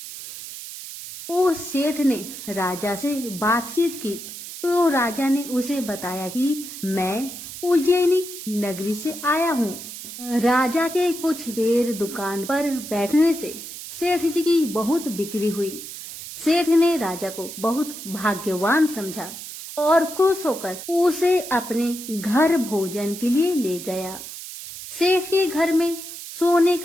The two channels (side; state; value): right; noise; hiss, 11 dB below the sound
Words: उस सेठ ने राजा से बातचीत की तो राजा ने उसे बताया कि मैं उज्जैनी नगरी से आया हूँ। राजा के कुछ देर दुकान पर बैठने से सेठ जी की बहुत बिक्री हुई। सेठ ने राजा को बहुत भाग्यवान समझा और खुश होकर उसे अपने घर भोजन के लिए ले गया। सेठ के घर में सोने